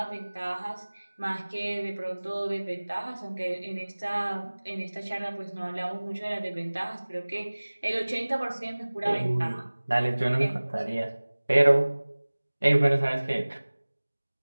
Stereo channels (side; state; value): both; inverted; correlation -1.00